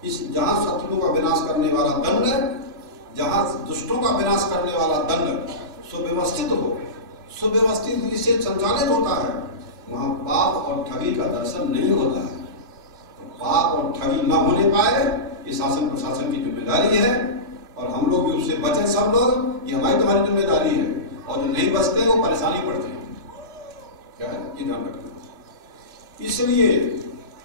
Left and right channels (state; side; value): late; left; 3.1 ms